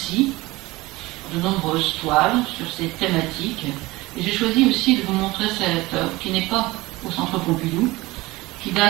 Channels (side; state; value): left; quieter; 20.4 dB